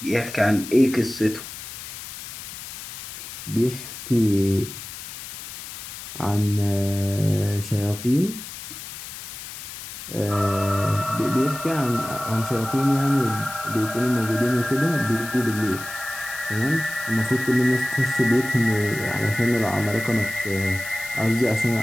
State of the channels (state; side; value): noise; left; hiss, 11 dB below the sound